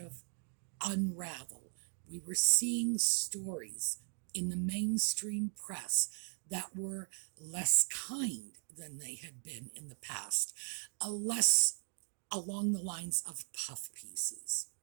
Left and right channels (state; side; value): silent; left; 52 dB below the other